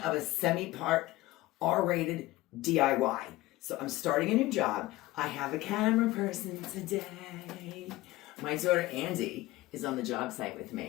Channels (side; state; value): right; quieter; 17.9 dB